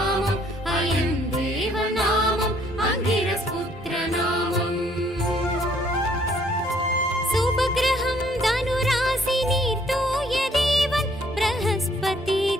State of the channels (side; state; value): both; normal; correlation 0.64